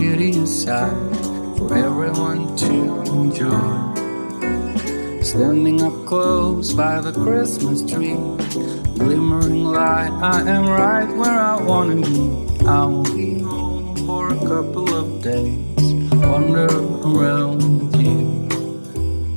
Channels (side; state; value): both; inverted; correlation -1.00